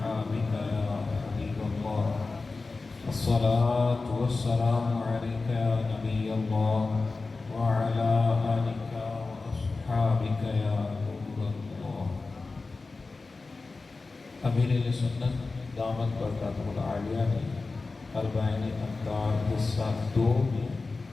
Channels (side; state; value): right; quieter; 3.8 dB